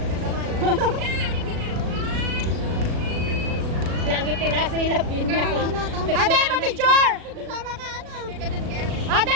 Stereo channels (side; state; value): left; late; 37 ms